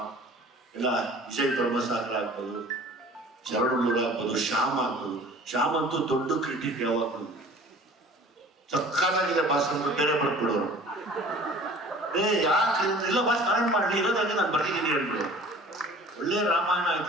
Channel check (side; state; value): both; normal; correlation 0.46